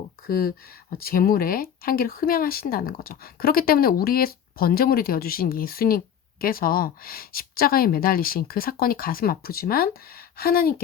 그 제물의 향기를 흠양하신다는 거죠. 그렇기 때문에 우리의 번제물이 되어주신 예수님 예수님께서 십자가에 매달리신 그 사건이 가슴 아프지만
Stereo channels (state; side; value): quieter; right; 8.9 dB